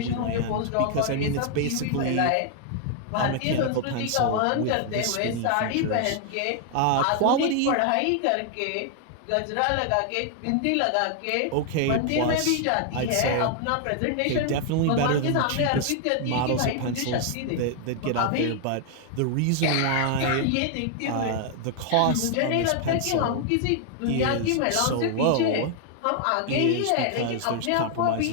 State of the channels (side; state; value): both; different; correlation 0.00